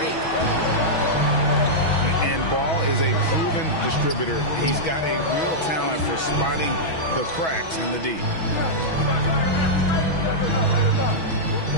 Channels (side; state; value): right; late; 6.2 ms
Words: And Ball is a proven distributor. He's got a real talent for spotting the cracks in the D.